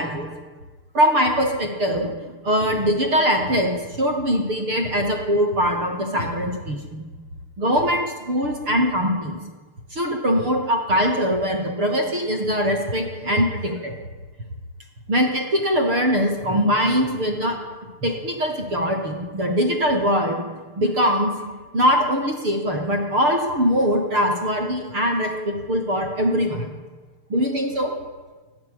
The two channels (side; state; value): left; late; 6.7 ms